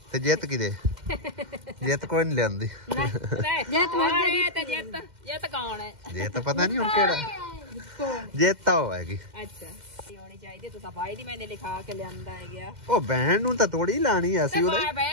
ਤੇ ਜਿੱਤ ਕਿਦੇ ਜਿੱਤ ਕੋਈ ਨਹੀਂ ਲਿਆਂਦੀ ਜਿੱਤ ਮਰ ਤੇ ਜਿੱਤ ਕੌਣ ਹੈ? ਜੇ ਤਾਂ ਪਤਾ ਨਹੀਂ ਹੁਣ ਕਿਹੜਾ ਜਿੱਤ ਤਾਂ ਉਹ ਹੈਗੀ ਅੱਛਾ ਹੋਣੀ ਚਾਹੀਦੀ ਤੁਸੀਂ ਭਾਈ ਦੀ ਮੈਨੇ ਲਿਖਾ ਕੇ ਲਿਆਂਦਾ ਹੈ ਗਿਆ। ਉਹ ਬਹਿਣ ਨੂੰ ਤਾਂ ਥੋੜੀ ਲਾਣੀ ਆ ਅਸੀਂ ਉਹਦੇ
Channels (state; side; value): late; left; 2.1 ms